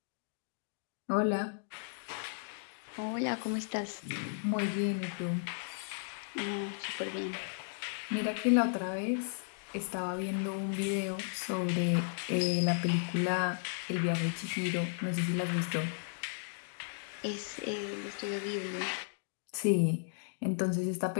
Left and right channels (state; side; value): silent; right; digital silence